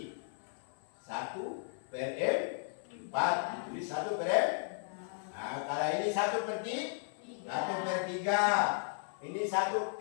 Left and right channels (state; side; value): silent; right; 54 dB below the other